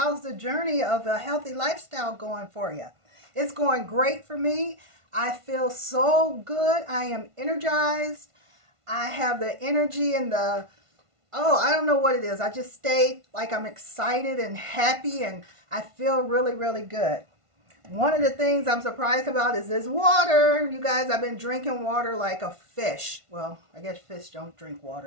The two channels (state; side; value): late; left; 1.5 ms